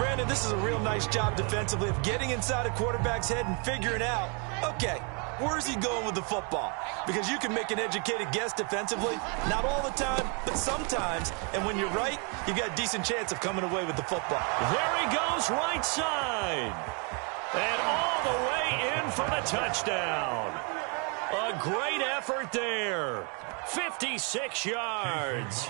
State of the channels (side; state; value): left; quieter; 35.3 dB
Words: this is a real nice job defensively of getting inside a quarterback's head and figuring out, okay, where's he going with the football? Because you can make an educated guess defensively. Not all the time, but sometimes. And when you're right, you've got a decent chance of coming away with the football. There he goes, right side. And all the way in for the touchdown. A great effort there. 56 yards.